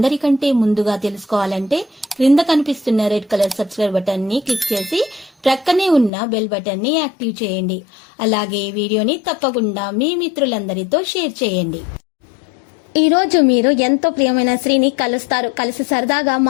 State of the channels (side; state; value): right; drops out; at 6.1 s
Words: ముందుగా తెలుసుకోవాలంటే క్రింద కనిపిస్తున్న రెడ్ కలర్ సబ్స్క్రైబ్ బటన్ ని క్లిక్ చేసి ప్రక్కనే ఉన్న బెల్ బటన్ ని యాక్టివ్ చేయండి. అలాగే ఈ వీడియోని తప్పకుండా మీ మిత్రులందరితో షేర్ చేయండి. ఈ రోజు మీరు ఎంతో ప్రియమైన స్త్రీని కలుస్తారు. కలిసి సరదాగా